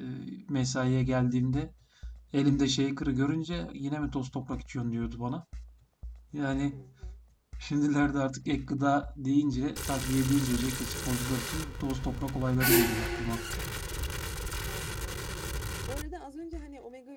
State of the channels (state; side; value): identical; both; correlation 1.00